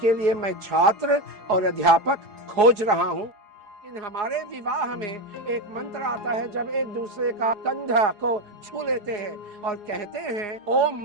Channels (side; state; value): left; late; 4.8 ms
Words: लिए मैं छात्र और अध्यापक खोज रहा हूँ। इन हमारे विवाह में एक मंत्र आता है, जब एक दूसरे का कंधा को छू लेते हैं और कहते हैं ओम